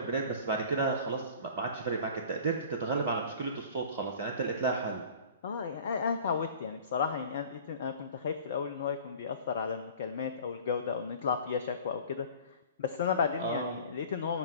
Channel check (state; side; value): inverted; both; correlation -0.44